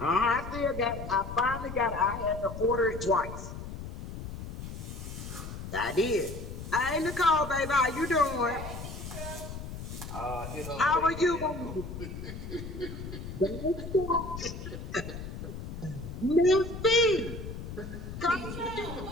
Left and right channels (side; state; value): left; noise; rumble, 9 dB below the sound